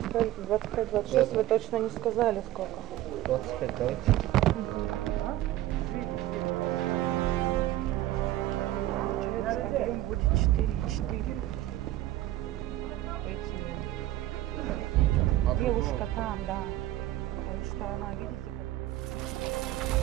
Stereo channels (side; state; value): left; quieter; 15.1 dB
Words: 25-26, вы точно не сказали сколько. 25, давайте. Получается, объем будет 4,4. Девушка там, да. Потому что она, видите, как...